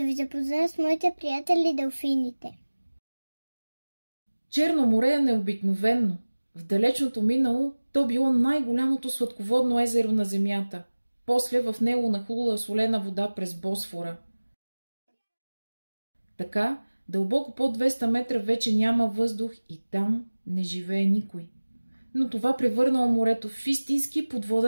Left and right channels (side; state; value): both; inverted; correlation -1.00